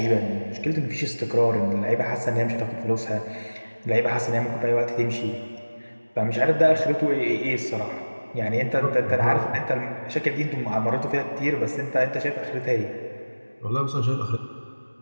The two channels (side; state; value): both; inverted; correlation -1.00